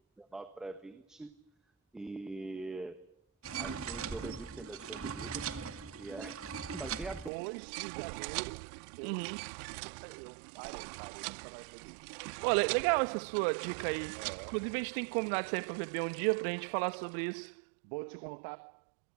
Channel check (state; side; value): drops out; left; at 7.3 s